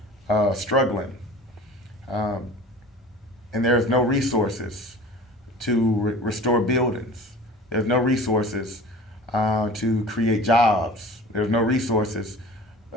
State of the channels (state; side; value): normal; both; correlation 0.41